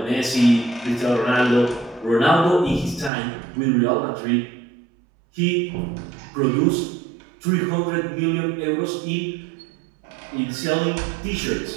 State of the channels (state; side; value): drops out; left; at 3.1 s